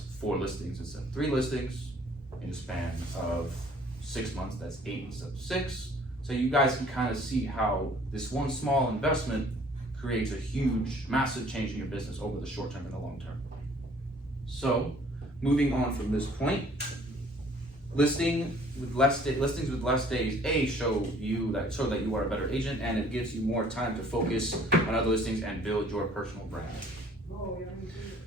4 listings instead of 3 listings. In a span of 6 months, that's 8 instead of 6. So you guys can kind of see how this one small investment creates a huge, massive change in your business over the short term and the long term. So, moving on from this point, listings with less days, show that you are a better agent, and it gives you more time to focus on other listings and build your personal brand.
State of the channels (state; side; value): normal; both; correlation 0.56